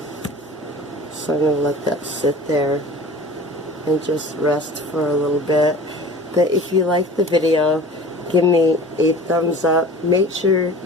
So I'm going to let that sit there and just rest for a little bit. But if you like the video, give me a thumbs up. Make sure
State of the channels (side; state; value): both; normal; correlation 0.41